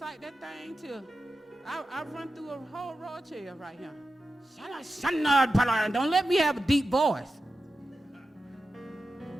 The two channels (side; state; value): both; normal; correlation 0.91